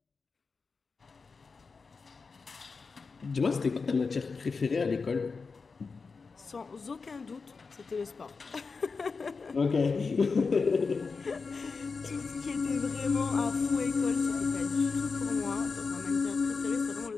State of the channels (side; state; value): right; quieter; 4.7 dB